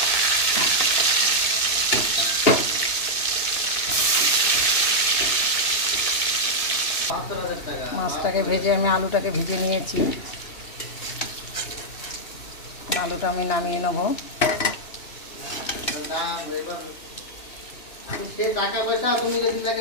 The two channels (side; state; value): right; late; 2.9 ms